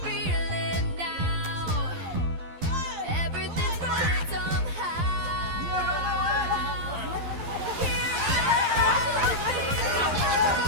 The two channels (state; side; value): late; left; 12 ms